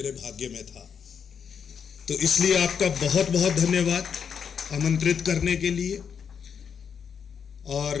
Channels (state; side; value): quieter; right; 7.1 dB